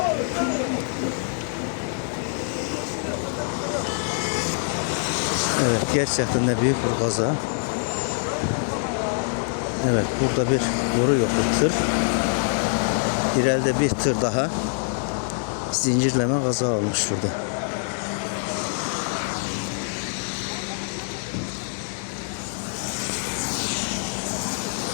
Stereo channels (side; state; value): right; silent; digital silence